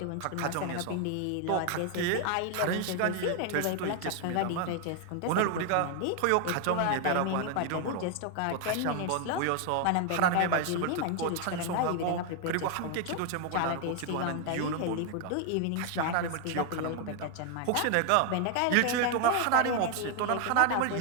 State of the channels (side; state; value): both; different; correlation 0.00